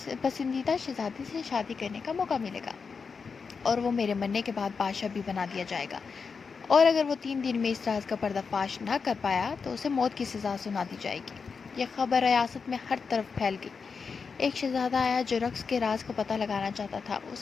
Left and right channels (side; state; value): right; quieter; 5.3 dB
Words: پسندیدہ شہزادی سے شادی کرنے کا موقع ملے گا، اور وہ میرے مرنے کے بعد بادشاہ بھی بنا دیا جائے گا، اور اگر وہ 3 دن میں اس راز کا پردہ فاش نہ کر پایا تو اسے موت کی سزا سنا دی جائے گی۔ یہ خبر ریاست میں ہر طرف پھیل گئی۔ ایک شہزادہ آیا جو رقص کے راز کا پتہ لگانا چاہتا تھا۔